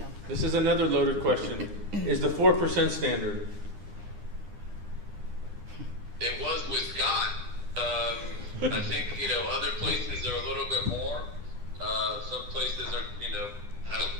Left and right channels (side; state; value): left; late; 9.8 ms